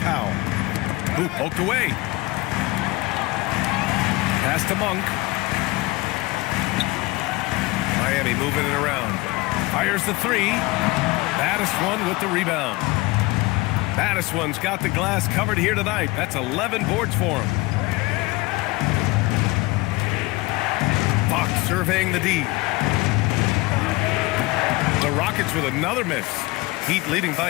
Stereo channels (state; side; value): quieter; right; 22.2 dB